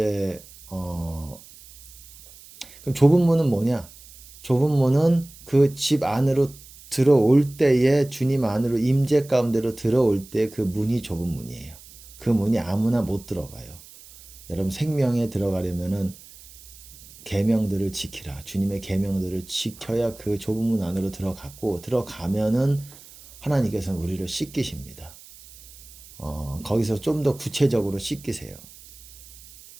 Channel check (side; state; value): right; noise; hiss, 20 dB below the sound